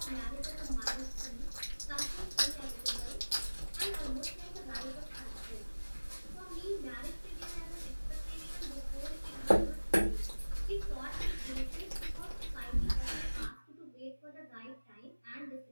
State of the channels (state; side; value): inverted; both; correlation -1.00